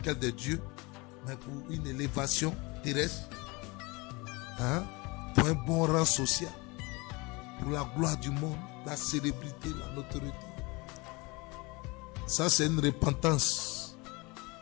de Dieu, mais pour une élévation terrestre, pour un bon rang social, pour la gloire du monde, la célébrité, la notoriété. Ça, c'est une repentance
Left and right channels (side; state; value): right; quieter; 26.0 dB